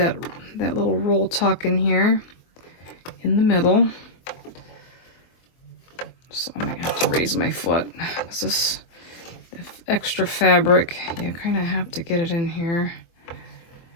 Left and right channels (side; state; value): right; late; 23 ms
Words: little roll tuck in here in the middle. So I might have to raise my foot, because this extra fabric, you kind of have to get it in here.